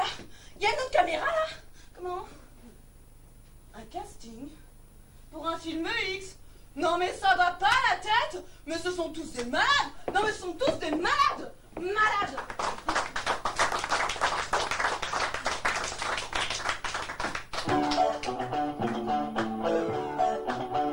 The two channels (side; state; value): both; identical; correlation 1.00